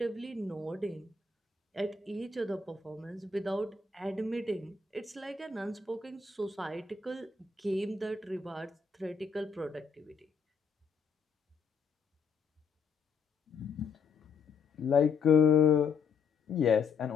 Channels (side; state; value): right; quieter; 5.3 dB